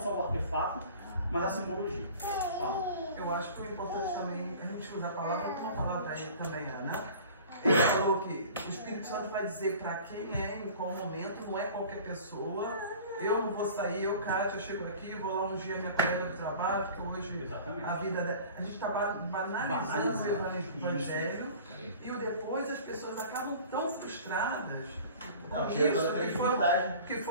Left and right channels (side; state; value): both; inverted; correlation -0.43